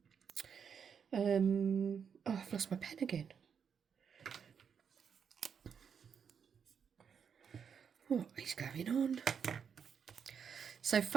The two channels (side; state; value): left; quieter; 7.0 dB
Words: Oh, I've lost my pen again. What is going on? So